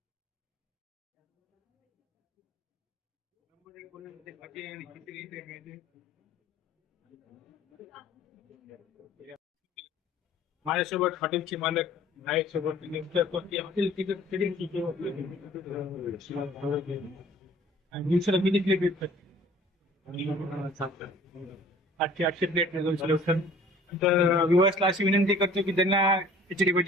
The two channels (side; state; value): both; normal; correlation 0.51